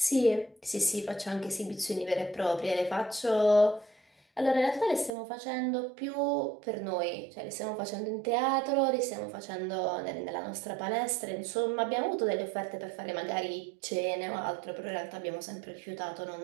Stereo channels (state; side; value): drops out; left; at 5.1 s